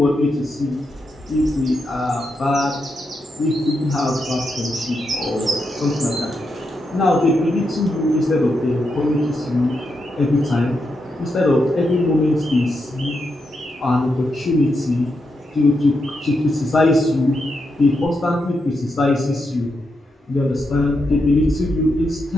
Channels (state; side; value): normal; both; correlation 0.84